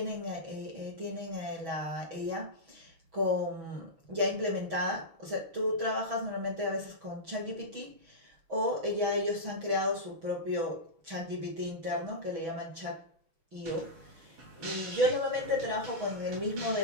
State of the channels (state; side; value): late; left; 6.2 ms